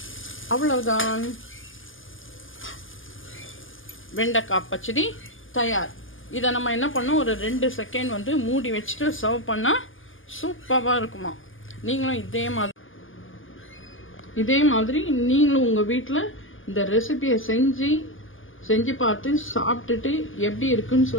அவ்வளவுதான், வெண்டைக்காய் பச்சடி தயார். இதை நம்ம என்ன பண்ணோம், ஒரு 2 செகண்ட் வந்து மூடி வச்சுட்டு சர்வ் பண்ணால் சூப்பராக இருக்குமா. நீங்களும் இதே மாதிரி நீங்களும் உங்கள் வீட்டில் இந்த ரெசிபியை செஞ்சு பார்த்து சாப்பிட்டுட்டு எப்படி இருக்குன்னு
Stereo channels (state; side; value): late; right; 0.58 ms